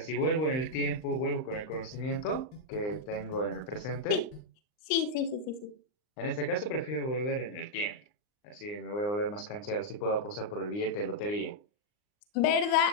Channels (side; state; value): right; late; 39 ms